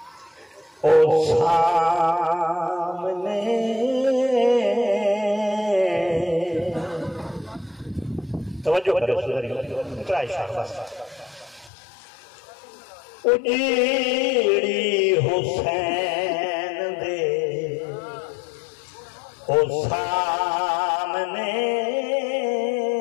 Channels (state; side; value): drops out; right; at 11.7 s